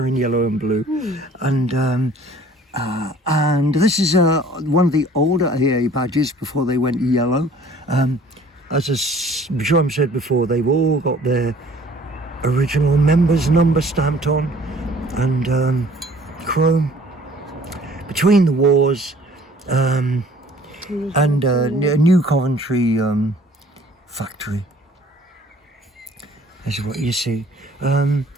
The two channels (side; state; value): both; normal; correlation 0.53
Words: yellow and blue. And this is one of the older AA badges before they went yellow. As Jerome said before, they've all got their original members number stamped on, and chrome. Between the wars, and New Coventry factory. This is what you see. I've